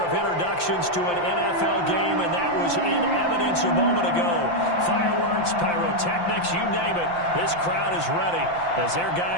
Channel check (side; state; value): right; late; 5.8 ms